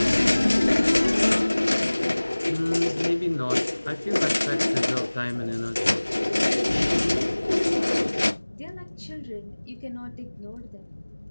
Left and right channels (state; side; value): inverted; both; correlation -1.00